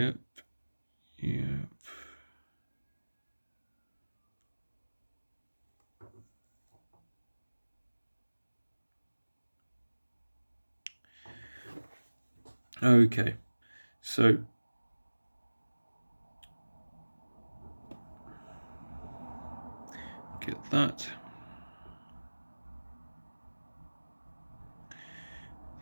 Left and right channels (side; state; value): both; inverted; correlation -1.00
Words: Okay, so get that.